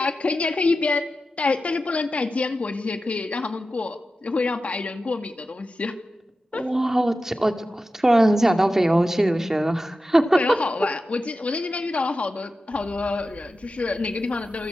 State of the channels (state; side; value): normal; both; correlation 0.92